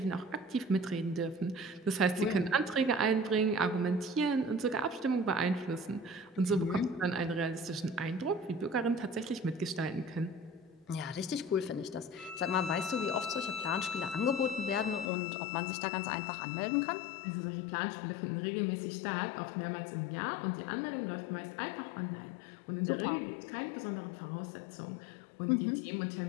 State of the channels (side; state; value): right; drops out; at 15.1 s